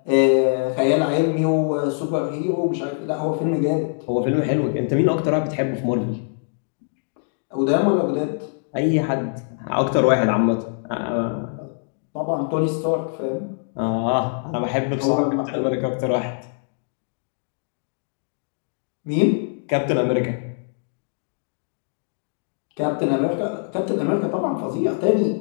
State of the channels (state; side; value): silent; right; digital silence